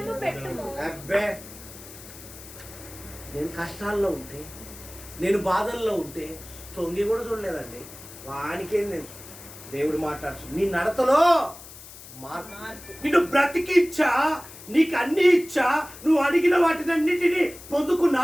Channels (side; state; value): left; noise; hiss, 17 dB below the sound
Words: పెట్టుము. అబ్బే, నేను కష్టాల్లో ఉంటే, నేను బాధల్లో ఉంటే తొంగి కూడా చూడలేదండి. వానికేంది? దేవుడు మాట్లాడుచు. నీ నడతలో మార్పు, నిన్ను బ్రతికిచ్చా, నీకు అన్ని ఇచ్చా, నువ్వు అడిగిన వాటినన్నిటినీ